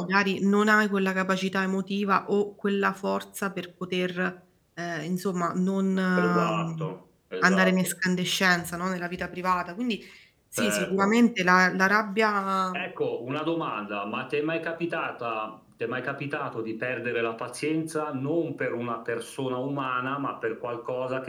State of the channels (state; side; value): identical; both; correlation 1.00